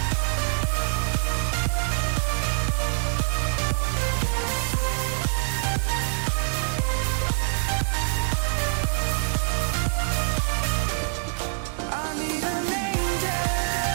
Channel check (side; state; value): left; silent; digital silence